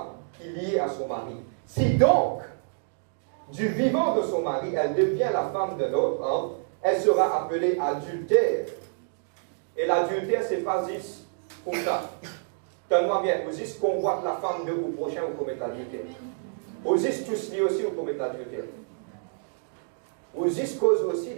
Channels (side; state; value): left; silent; digital silence